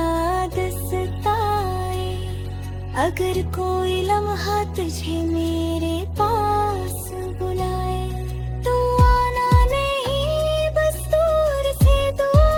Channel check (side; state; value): both; identical; correlation 1.00